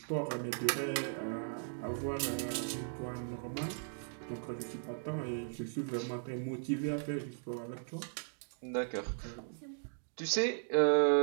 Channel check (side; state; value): left; silent; digital silence